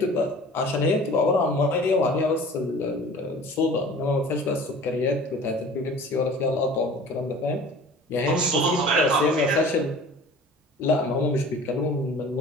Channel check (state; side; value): normal; both; correlation 0.44